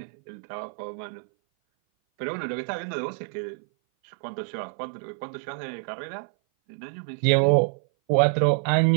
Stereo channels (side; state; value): left; silent; 57 dB below the other